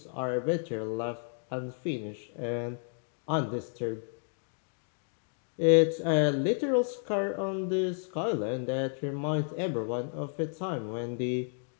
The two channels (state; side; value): silent; right; 57 dB below the other